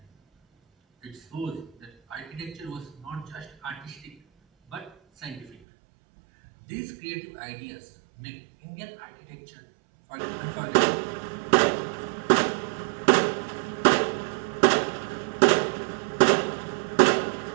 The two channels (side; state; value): left; drops out; at 5.6 s